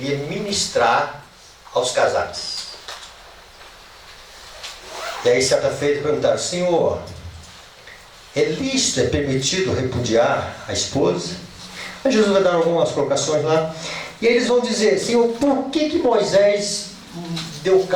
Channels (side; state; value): both; identical; correlation 1.00